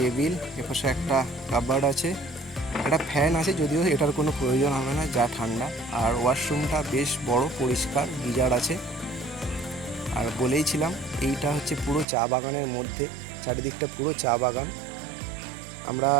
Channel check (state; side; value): drops out; left; at 12.1 s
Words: এপাশে একটা কাপবোর্ড আছে, একটা ফ্যান আছে, যদিও এটার কোনো প্রয়োজন হবে না, যা ঠান্ডা। আর ওয়াশরুমটা বেশ বড়, পরিষ্কার, গিজার আছে। আর বলেইছিলাম এইটা হচ্ছে পুরো চা বাগানের মধ্যে, চারিদিকটা পুরো চা বাগান। আমরা